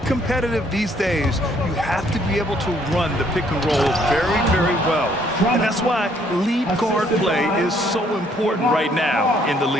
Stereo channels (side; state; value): both; normal; correlation 0.65